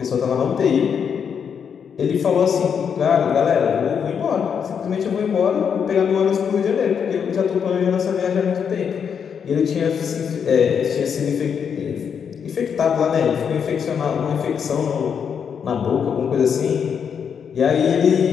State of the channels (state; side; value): quieter; right; 7.2 dB